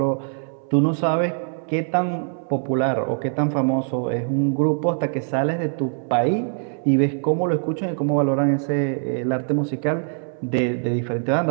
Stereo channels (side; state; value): left; silent; 64 dB below the other